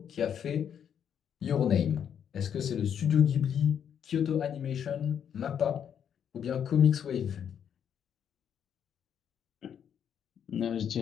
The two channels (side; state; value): right; quieter; 8.5 dB